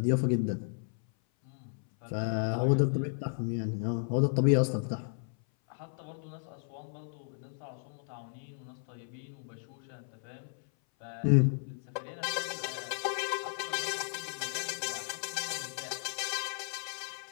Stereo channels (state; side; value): silent; right; 55 dB below the other